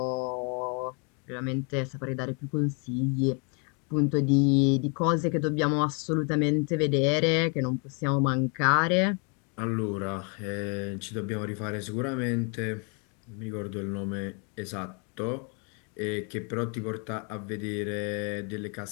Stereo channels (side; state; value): right; quieter; 36.5 dB